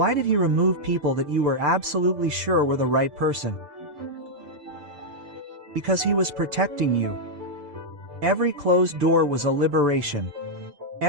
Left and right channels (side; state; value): left; late; 6.8 ms